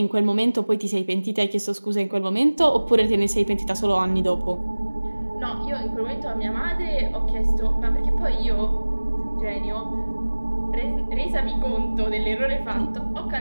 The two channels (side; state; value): both; inverted; correlation -1.00